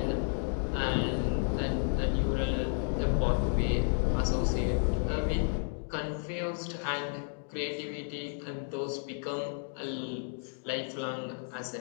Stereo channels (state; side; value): silent; right; 56 dB below the other